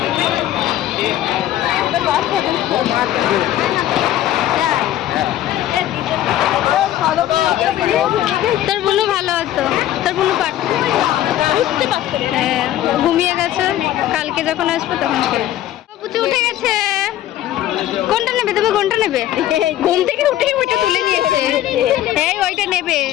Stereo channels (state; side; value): quieter; right; 13.0 dB